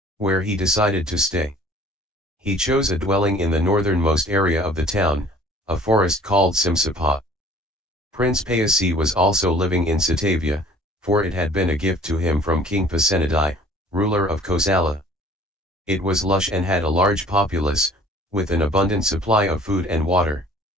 where he decided to stay. He chose a dwelling in the northernmost area of the town, a forest called Simsapa. Prince Payasi was also living in Satavia, for it had been a gift to him from King Pasenadi, ruler of Kosala. It was lush and had a large populace, with an abundant supply of food and water.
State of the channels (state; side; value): normal; both; correlation 0.51